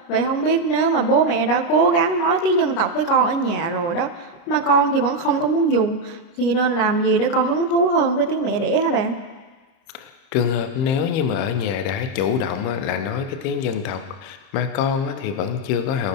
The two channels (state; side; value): late; right; 29 ms